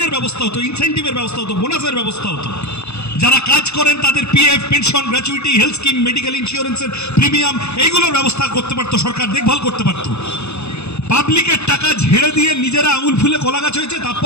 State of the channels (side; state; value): right; late; 0.81 ms